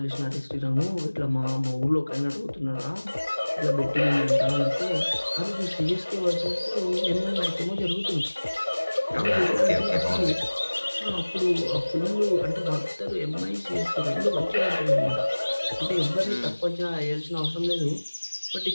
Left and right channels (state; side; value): inverted; both; correlation -1.00